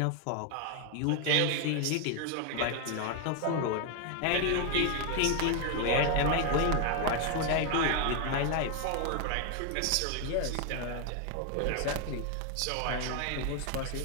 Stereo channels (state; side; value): different; both; correlation 0.01